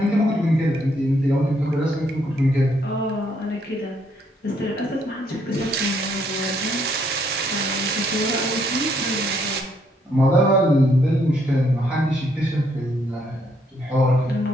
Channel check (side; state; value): both; normal; correlation 0.71